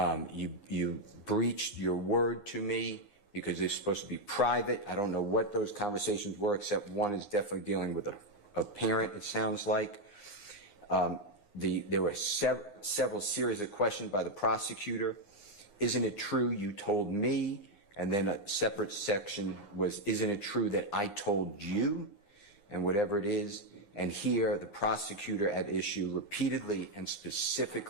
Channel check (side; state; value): right; late; 9.8 ms